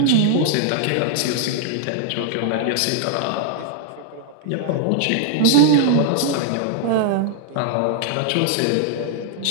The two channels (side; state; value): both; different; correlation -0.01